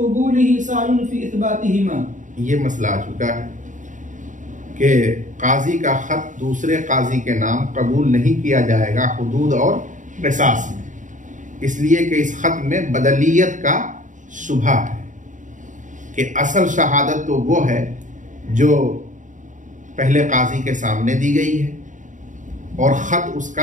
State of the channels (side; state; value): left; late; 0.37 ms